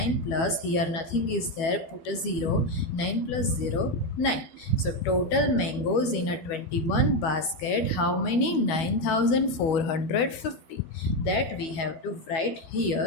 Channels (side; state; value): right; late; 12 ms